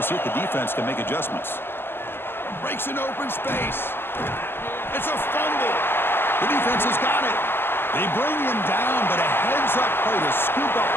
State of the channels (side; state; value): right; late; 0.11 ms